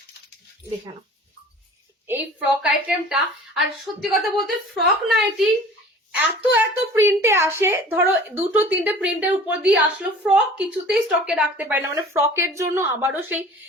দেখে নাও, এই ফ্রক আইটেমটা। আর সত্যি কথা বলতে ফ্রক নাইটি এত এত প্রিন্টে আসে, ধরো 2-3টে প্রিন্টের উপর দিয়ে আসলো, ফ্রক কিছুতেই স্টকে রাখতে পারে না। মানে ফ্রকের জন্য আবারও সেই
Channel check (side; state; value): both; normal; correlation 0.45